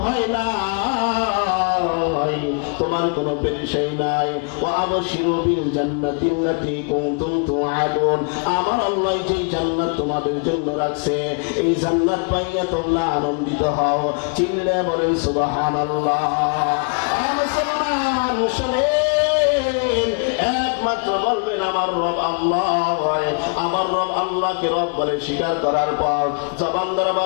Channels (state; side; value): quieter; right; 37.3 dB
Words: ভয় নাই, তোমার কোনো পেরেশানি নাই। ওয়া আবশিরু বিল জান্নাতিল্লাতী কুনতুম তুআদুন, আমার আল্লাহ যেই জান্নাত তোমাদের জন্য রাখছে, এই জান্নাত পাইয়া তোমরা আনন্দিত হও। চিল্লে বলেন সুবহানাল্লাহ। মুসলমান শুনেন, একমাত্র বলবেন আমার রব আল্লাহ। আমার রব আল্লাহকে রব বলে স্বীকার করার পর জবান দ্বারা